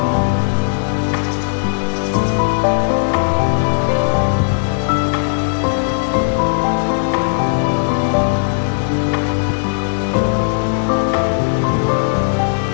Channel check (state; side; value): silent; right; digital silence